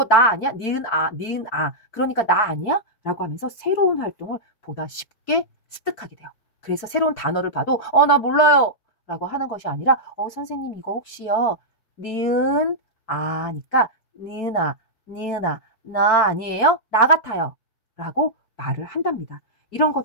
나 아니야? 니은 아, 니은 아. 그러니까 나 아니야? 라고 하면서 새로운 활동을 보다 쉽게 습득하게 돼요. 그래서 새로운 단어를 봐도 나 몰라요. 라고 하는 것이 아니라 선생님 이거 혹시요. 니은 아니까 니은아, 니은아, 나 아니에요? 나 같아요. 라고 말을 한답니다. 이런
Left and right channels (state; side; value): late; right; 4.6 ms